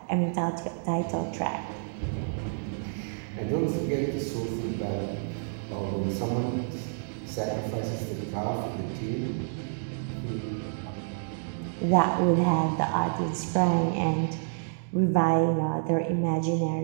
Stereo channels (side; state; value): left; silent; digital silence